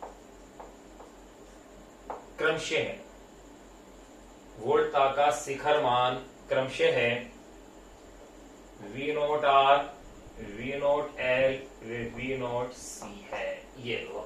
क्रमशः है। वोल्टता का शिखर मान क्रमशः है V naught R, V naught L, V naught C है। ये लो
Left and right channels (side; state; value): both; identical; correlation 1.00